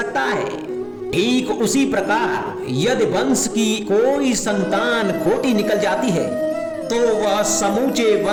है। ठीक उसी प्रकार यदि वंश की कोई संतान खोटी निकल जाती है तो वह समूचे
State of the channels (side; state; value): both; identical; correlation 1.00